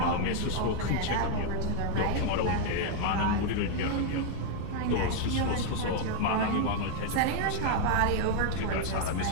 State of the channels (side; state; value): both; different; correlation 0.00